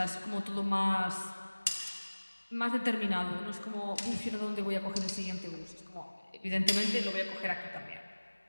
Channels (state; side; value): inverted; both; correlation -1.00